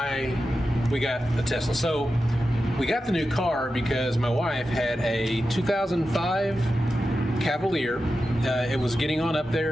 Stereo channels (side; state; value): both; normal; correlation 0.91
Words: we got a Tesla. So we got the new car because my wife had a 2005 Cavalier. It was getting on up